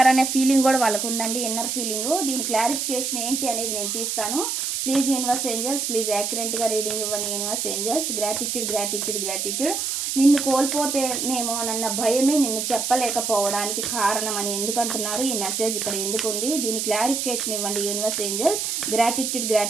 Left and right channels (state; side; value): noise; right; hiss, 1 dB below the sound